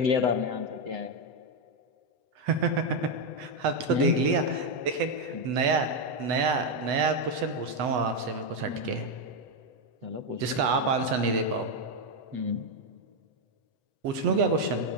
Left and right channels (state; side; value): late; left; 8.0 ms